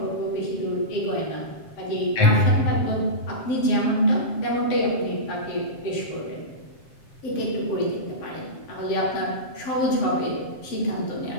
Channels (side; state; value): right; late; 7.4 ms